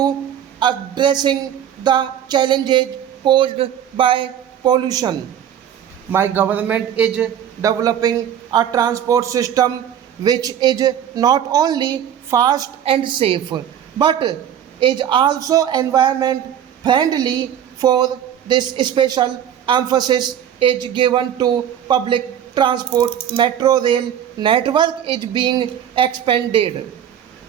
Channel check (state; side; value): quieter; left; 9.7 dB